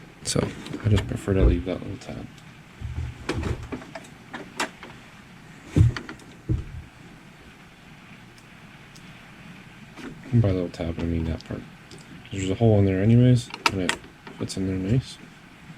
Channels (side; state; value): both; identical; correlation 1.00